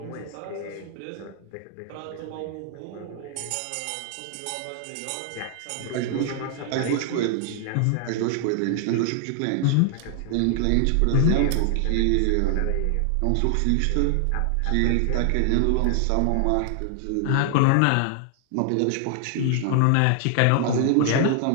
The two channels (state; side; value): different; both; correlation 0.00